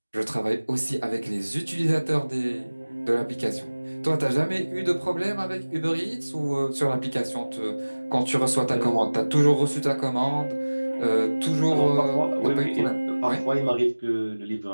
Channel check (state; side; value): inverted; both; correlation -1.00